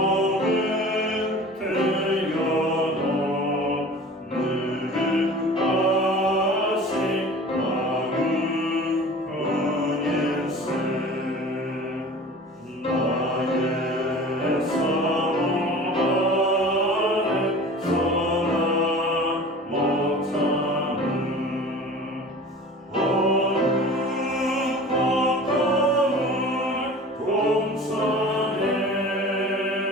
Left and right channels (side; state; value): both; normal; correlation 0.41